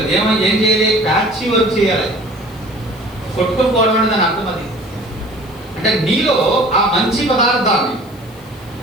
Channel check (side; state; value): left; noise; hiss, 26 dB below the sound